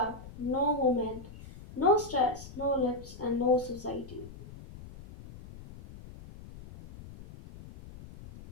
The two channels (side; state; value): left; noise; rumble, 16 dB below the sound